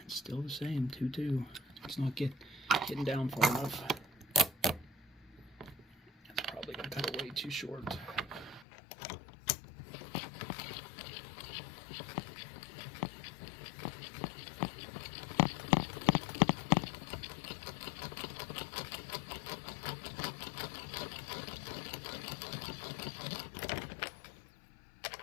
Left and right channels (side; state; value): right; drops out; at 8.7 s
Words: It's still the same, 2.2. It's not getting down far enough. It's probably gonna cut it way too short.